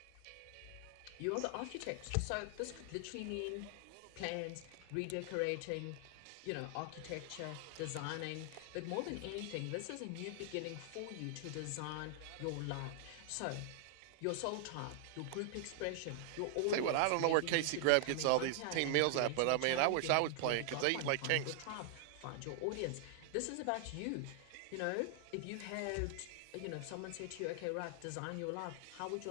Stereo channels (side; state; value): both; different; correlation 0.00